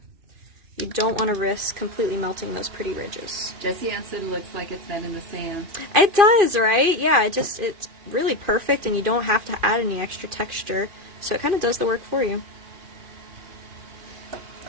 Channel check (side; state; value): left; late; 2.5 ms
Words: You don't want to risk completely melting those pretty ridges. Jessie Ann said it looks like it's been in the sand. It does, right? Yeah, it's really perfect, and you don't have to add any extra texture, so it kind of does the work for you.